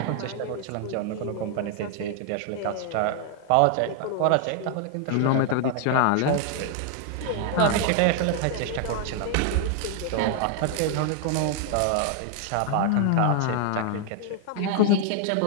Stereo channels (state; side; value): different; both; correlation 0.00